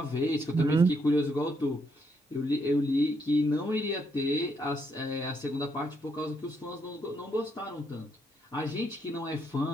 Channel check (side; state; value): both; normal; correlation 0.75